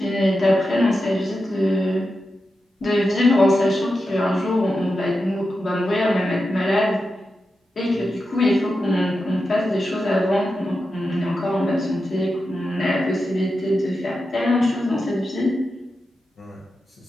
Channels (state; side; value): normal; both; correlation 0.89